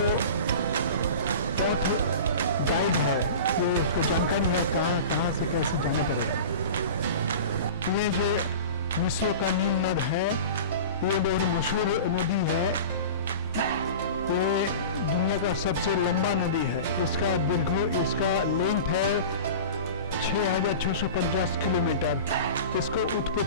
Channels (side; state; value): both; inverted; correlation -0.34